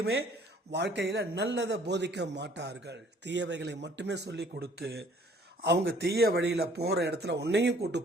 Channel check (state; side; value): normal; both; correlation 0.57